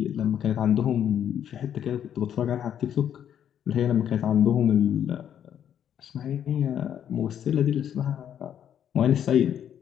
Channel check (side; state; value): right; quieter; 9.5 dB